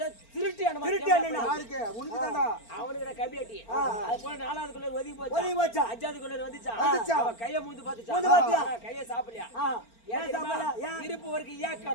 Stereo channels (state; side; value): late; right; 4.4 ms